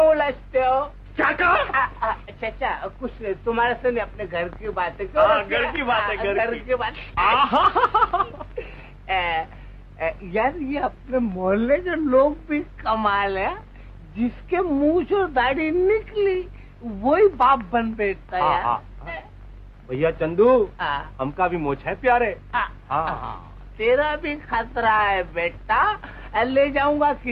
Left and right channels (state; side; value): identical; both; correlation 1.00